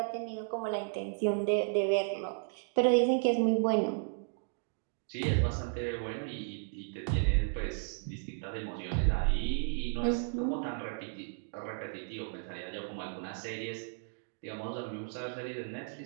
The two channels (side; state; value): left; silent; digital silence